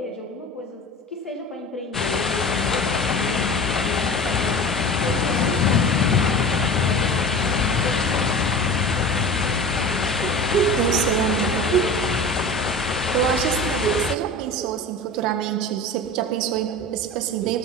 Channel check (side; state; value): both; normal; correlation 0.35